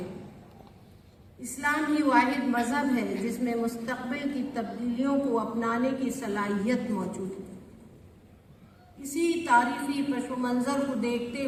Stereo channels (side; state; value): both; identical; correlation 1.00